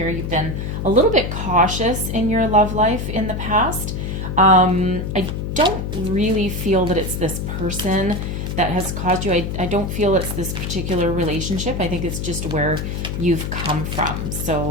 you've been a little bit cautious in your love life in the past. I don't really feel that it's this person that has caused you. I don't feel it's this particular relationship. I think it's just where you've come from.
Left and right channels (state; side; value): noise; left; hum, 4 dB below the sound